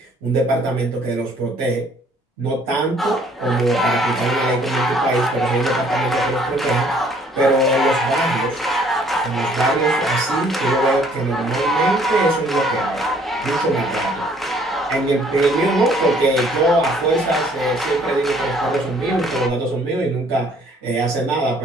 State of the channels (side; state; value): both; normal; correlation 0.60